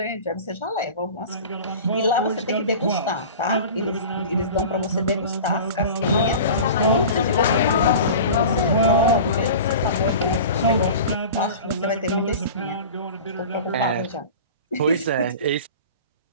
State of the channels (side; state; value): both; inverted; correlation -0.36